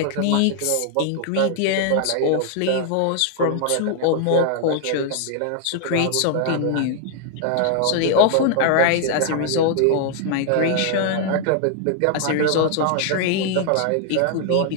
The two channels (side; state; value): both; different; correlation 0.00